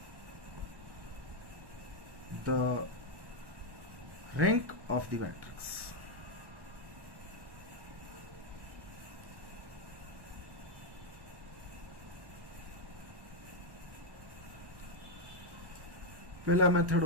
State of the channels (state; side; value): late; left; 1.1 ms